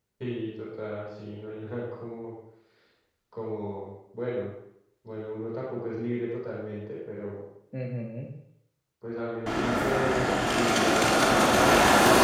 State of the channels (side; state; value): both; identical; correlation 1.00